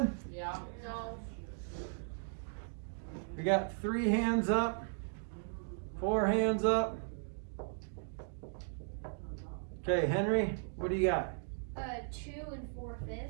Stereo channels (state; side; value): silent; left; digital silence